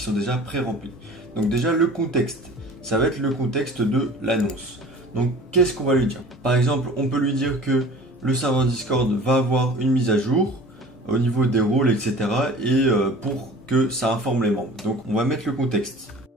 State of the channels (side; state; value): both; normal; correlation 0.43